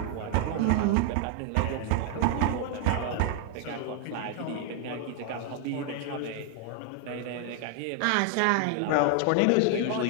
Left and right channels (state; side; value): different; both; correlation 0.00